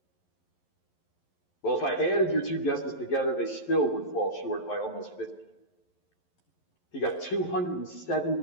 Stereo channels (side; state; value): right; late; 11 ms